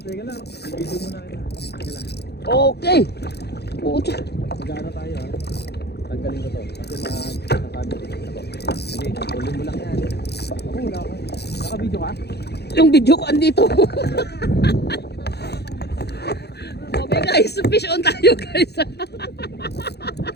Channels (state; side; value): late; right; 0.48 ms